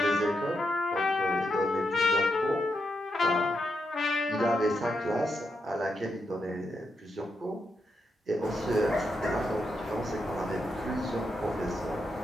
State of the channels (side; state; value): both; normal; correlation 0.83